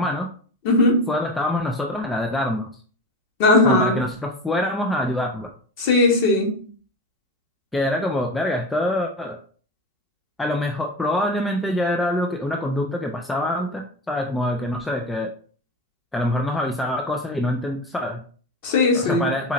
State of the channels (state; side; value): normal; both; correlation 0.22